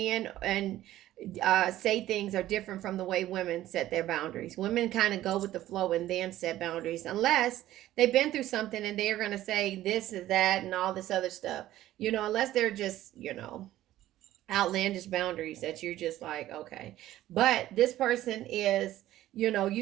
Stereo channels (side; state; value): left; quieter; 14.2 dB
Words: and say things are different from the way women set their boundaries. Women kind of go with the flow and then set boundaries, unless they've been through something and they're going to say this is that and all this other stuff. You know, unless they're just, you know, outlandish boundaries that you're just like, okay. But this person is, you know,